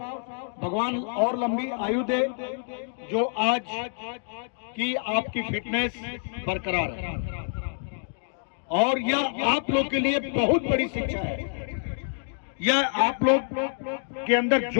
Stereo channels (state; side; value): silent; right; digital silence